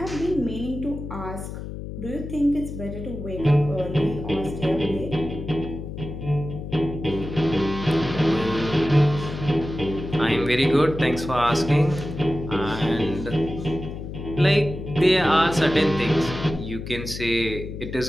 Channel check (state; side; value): noise; left; hum, 8 dB below the sound